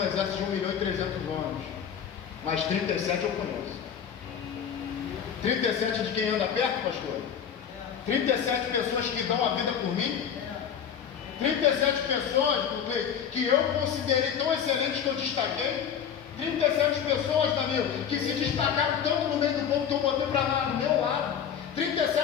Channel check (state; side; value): quieter; right; 8.1 dB